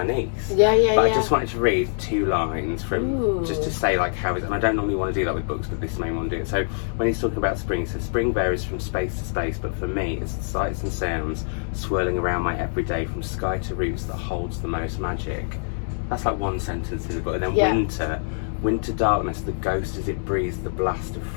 niece. But I just wanted to read 2 lines from just to say like how is, and I don't normally want to do that with books, but this made me want to do it. So when he's talking about spring, he says spring varies from space to space, but for me it's the sights and sounds swirling around my everyday, from sky to roots, that holds the most magic. That's like one sentence in the book. And then winter darkness, the ghost as it breathes the blast of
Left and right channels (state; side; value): silent; right; digital silence